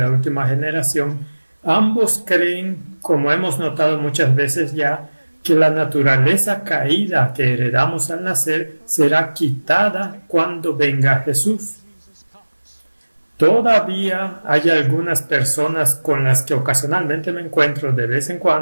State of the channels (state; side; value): inverted; both; correlation -1.00